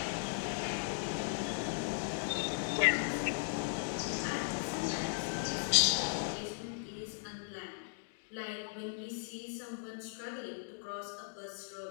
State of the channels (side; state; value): right; silent; digital silence